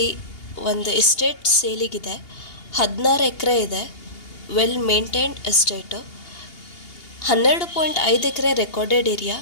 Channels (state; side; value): late; right; 2.8 ms